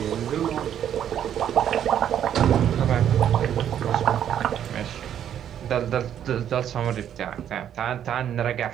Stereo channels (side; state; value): left; quieter; 9.8 dB